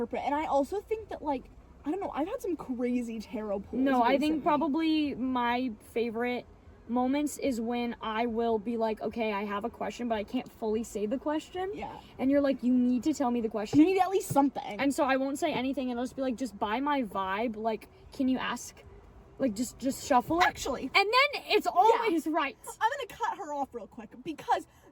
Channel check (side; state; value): both; identical; correlation 1.00